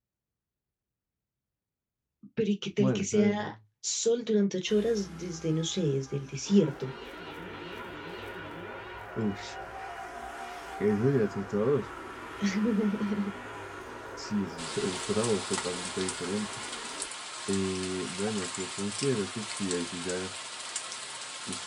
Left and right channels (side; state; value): both; identical; correlation 1.00